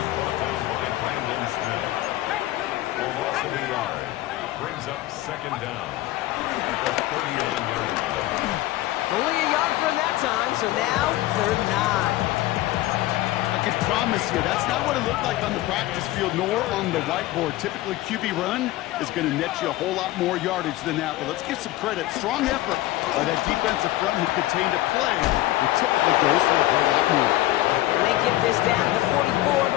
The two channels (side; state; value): right; quieter; 16.5 dB